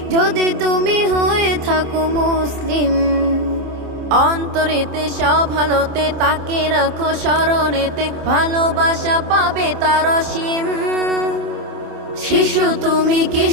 যদি তুমি হয়ে থাকো মুসলিম। অন্তরেতে সব ভালোতে তাকে রাখো স্মরণেতে, ভালোবাসা পাবে তার অসীম। শিশু তুমি,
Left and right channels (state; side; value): late; left; 27 ms